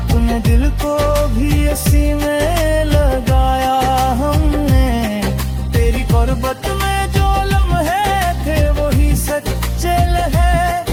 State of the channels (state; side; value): identical; both; correlation 1.00